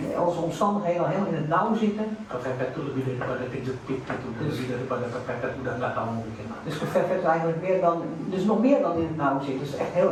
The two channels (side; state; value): both; identical; correlation 1.00